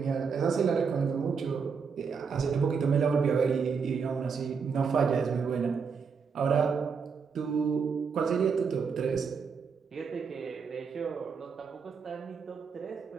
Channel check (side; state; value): left; quieter; 5.8 dB